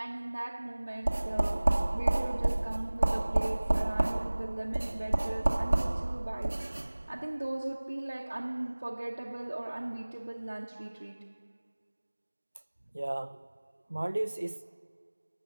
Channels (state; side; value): inverted; both; correlation -1.00